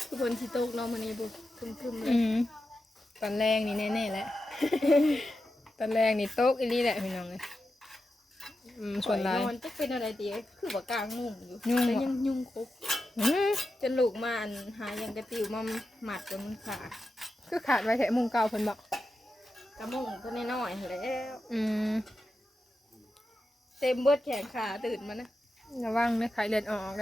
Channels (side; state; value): both; normal; correlation 0.90